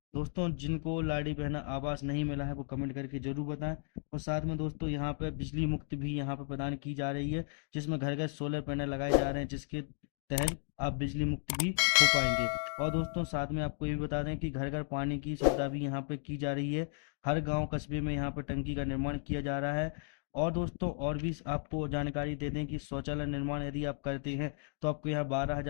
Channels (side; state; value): right; silent; 55 dB below the other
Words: दोस्तों जिनको लाडली बहना आवास नहीं मिला है वो कमेंट करके जरूर बताएं। और साथ में दोस्तों यहाँ पे बिजली मुक्त भी यहाँ पे प्रदान की जा रही है, जिसमें घर घर सोलर पैनल लगाए जा रहे हैं, जिसके तहत आप बिजली मुक्त भी हो पाएंगे। और दोस्तों साथ में आपको ये भी बता दें कि घर घर पानी की सुविधा भी यहाँ पे की जा रही है। हर गांव कस्बे में यहाँ पे टंकी का निर्माण किया जा रहा है। और दोस्तों और भी आपको जानकारी दे दें कि शौचालय निर्माण यदि आप करते हैं तो आपको यहाँ